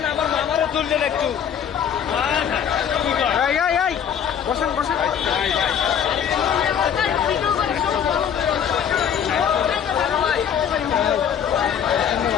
আমার মামারও তুললেন একটু। বসেন বসেন।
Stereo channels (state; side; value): quieter; right; 8.4 dB